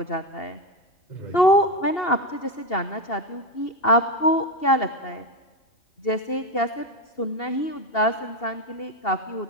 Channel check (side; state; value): right; late; 2.7 ms